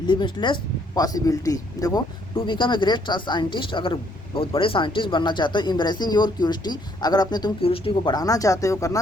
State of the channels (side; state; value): both; normal; correlation 0.67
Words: possibility. देखो, to become a great scientist, अगर बहुत बड़े साइंटिस्ट बनना चाहते हो, एम्ब्रेसिंग योर क्यूरियोसिटी, अगर अपने तुम क्यूरियोसिटी को बढ़ाना चाहते हो,